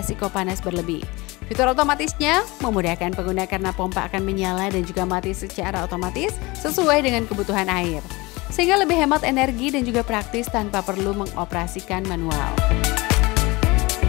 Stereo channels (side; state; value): right; quieter; 23.3 dB